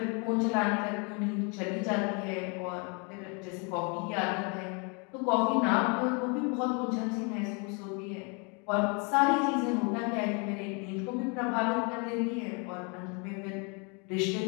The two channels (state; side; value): quieter; right; 33.9 dB